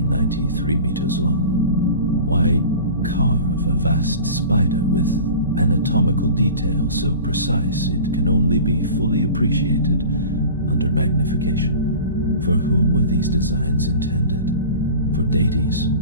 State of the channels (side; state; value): both; inverted; correlation -0.38